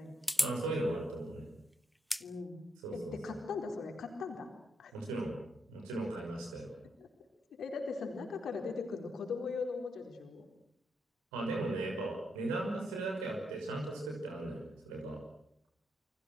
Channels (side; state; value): both; normal; correlation 0.80